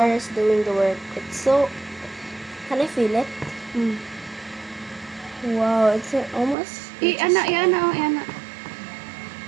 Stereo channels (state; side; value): drops out; left; at 6.6 s